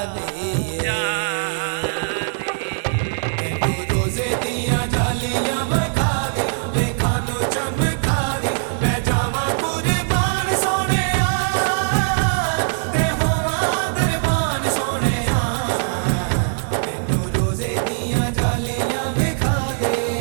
रोजे दिया जालियां विखा दे, लेखा नू चमका दे। मैं जावां कुर्बान सोहणिया ते होवां दरबान सोहणिया। मैनू रोजे दिया जालियां विखा दे।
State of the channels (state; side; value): silent; left; digital silence